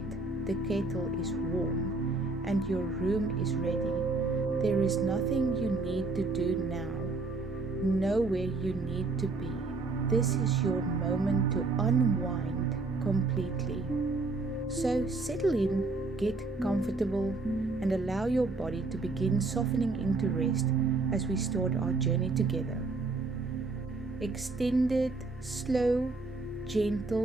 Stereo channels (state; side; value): quieter; left; 3.5 dB